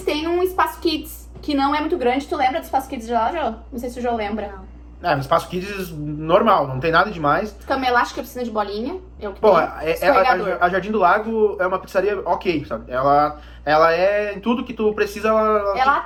têm um espaço kids, que não é muito grande. Tu lembra do espaço kids de lá, Jô? Não sei se o Jô lembra. Não. Um espaço Kids normal, não tem nada demais. Cama elástica, piscina de bolinha, é o que Bom, tem. Escorregador. a Jardim do Lago é uma pizzaria ok, sabe? Ela é em tudo que tu precisa, Ela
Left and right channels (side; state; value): both; identical; correlation 1.00